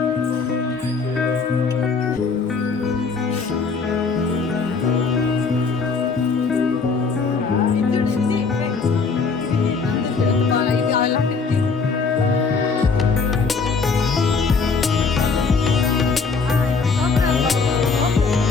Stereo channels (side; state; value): right; quieter; 4.8 dB